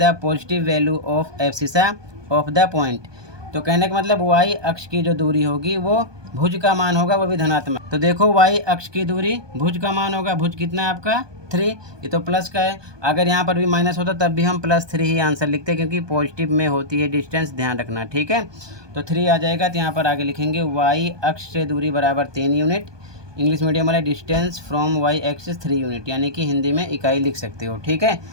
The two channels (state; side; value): late; left; 1.2 ms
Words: positive value of abscissa of the point. तो कहने का मतलब y अक्ष की जो दूरी होगी वो भुज का मान होगा, वो भी धनात्मक। तो देखो, y अक्ष की दूरी भुज का मान होगा। भुज कितना है आपका? 3। ये तो प्लस का है। अगर यहाँ पर भी माइनस होता तब भी हम +3 ही आंसर लिखते, क्योंकि पॉजिटिव में होती है डिस्टेंस, ध्यान रखना। ठीक है, तो 3 आ जाएगा। तो यहाँ पर आगे लिखेंगे y अक्ष से दूरी बराबर 3 यूनिट। इंग्लिश मीडियम वाले distance from y axis 3 unit, यानी कि हिंदी में इकाई लिख सकते हो। ठीक है,